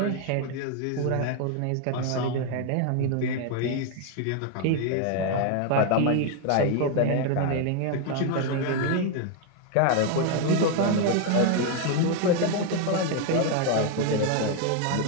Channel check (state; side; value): different; both; correlation 0.01